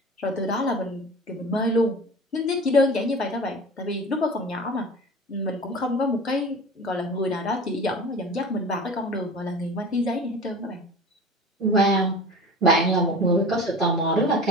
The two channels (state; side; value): normal; both; correlation 0.36